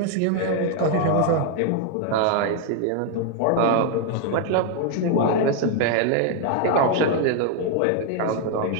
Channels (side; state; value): both; different; correlation 0.00